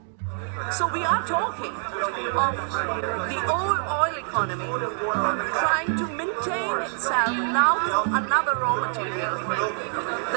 So we are talking of the old oil economy trying to maintain itself now from another raw material, the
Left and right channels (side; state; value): left; silent; 58 dB below the other